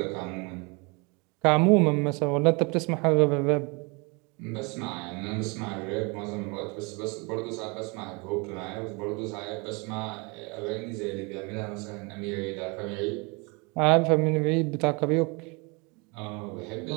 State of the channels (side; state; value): left; quieter; 29.6 dB